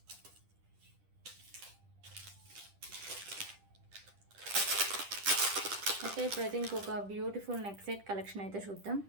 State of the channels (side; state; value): left; late; 10 ms